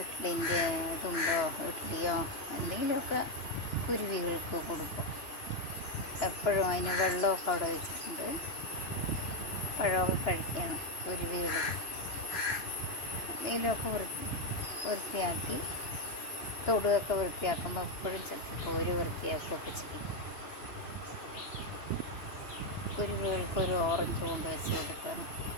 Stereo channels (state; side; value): late; right; 2.9 ms